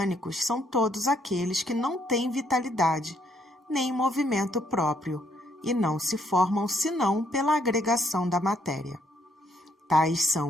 são todos aqueles que não têm vitalidade, nem movimento próprio, e não se formam senão pela agregação da matéria. Tais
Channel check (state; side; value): normal; both; correlation 0.70